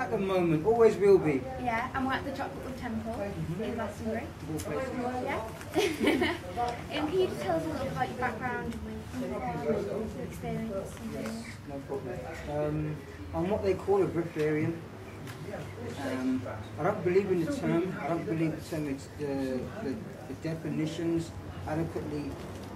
the moment, always will be. Yeah, and we're at the Chocolate Temple in Glastonbury. Yeah. Can you just tell us a little bit about your background, your experience? Yes, no problem. I'm what they call a Breatharian. I don't believe in the term. I don't believe the term. It's the definitions adequately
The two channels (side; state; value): both; identical; correlation 1.00